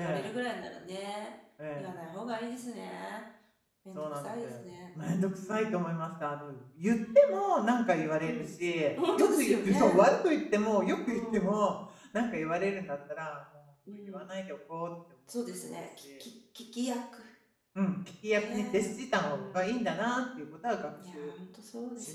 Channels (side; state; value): both; identical; correlation 1.00